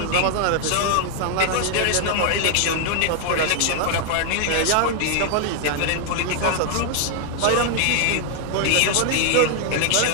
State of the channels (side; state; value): both; different; correlation 0.00